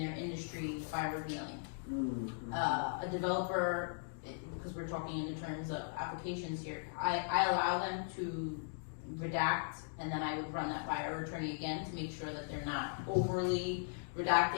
industry by revealing. A developer, because we're talking in the terms of applications here, I allow them to redact, and then I would run that by our attorney again to make sure that they're not overly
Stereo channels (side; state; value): right; silent; digital silence